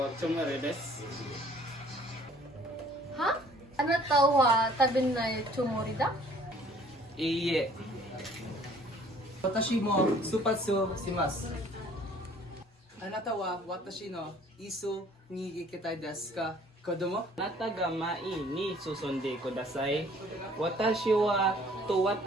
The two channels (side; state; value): both; normal; correlation 0.56